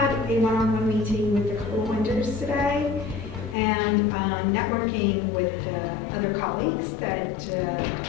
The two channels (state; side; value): drops out; right; at 3.6 s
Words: a one-on-one meeting with the co-winners today and networking with other colleagues that